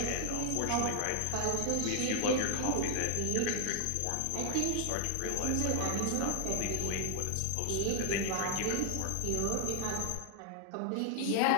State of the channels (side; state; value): both; different; correlation 0.00